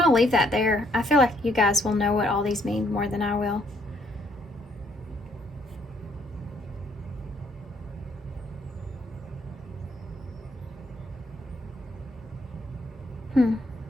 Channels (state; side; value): normal; both; correlation 0.69